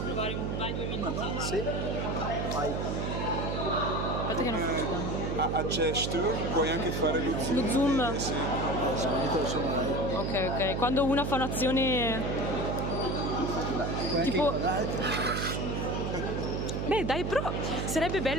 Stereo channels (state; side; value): noise; right; hum, 1 dB below the sound